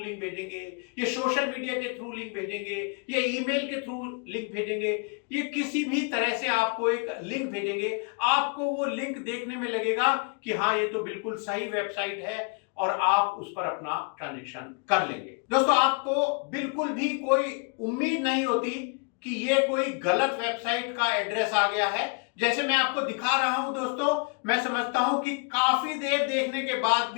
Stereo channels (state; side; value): quieter; right; 36.5 dB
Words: भेजेंगे, ये सोशल मीडिया के थ्रू लिंक भेजेंगे, ये ईमेल के थ्रू लिंक भेजेंगे, ये किसी भी तरह से आपको एक लिंक भेजेंगे। आपको वो लिंक देखने में लगेगा कि हाँ ये तो बिल्कुल सही वेबसाइट है और आप उस पर अपना ट्रांजैक्शन कर लेंगे। दोस्तों आपको बिल्कुल भी कोई उम्मीद नहीं होती कि ये कोई गलत वेबसाइट का एड्रेस आ गया है। जैसे मैं आपको दिखा रहा हूं दोस्तों, मैं समझता हूं कि काफी देर देखने के बाद